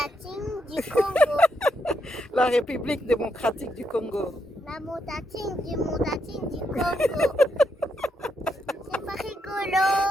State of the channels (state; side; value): normal; both; correlation 0.80